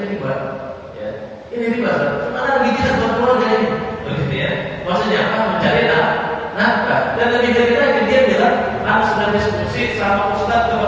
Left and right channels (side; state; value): both; identical; correlation 1.00